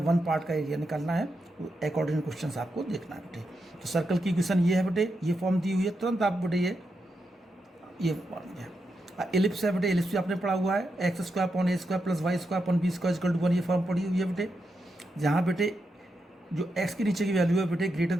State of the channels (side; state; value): both; normal; correlation 0.85